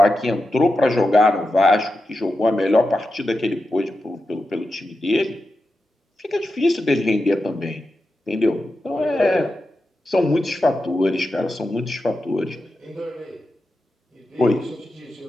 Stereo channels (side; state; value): both; normal; correlation 0.90